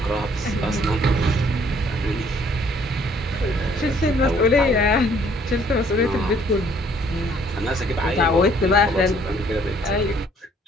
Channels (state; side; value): normal; both; correlation 0.61